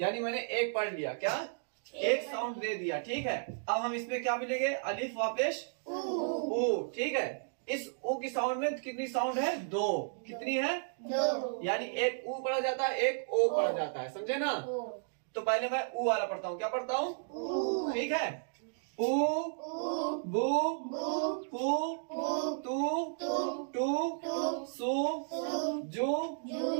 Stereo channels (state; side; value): silent; left; digital silence